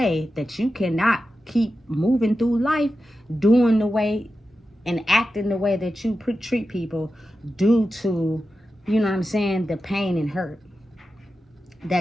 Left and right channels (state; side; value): normal; both; correlation 0.91